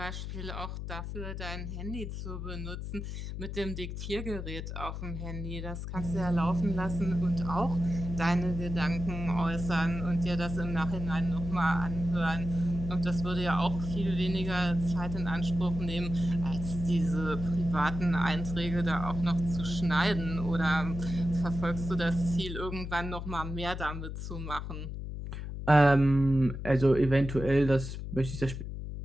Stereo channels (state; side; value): noise; left; hum, 6 dB below the sound